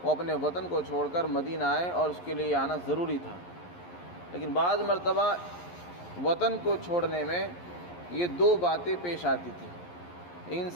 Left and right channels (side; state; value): right; late; 11 ms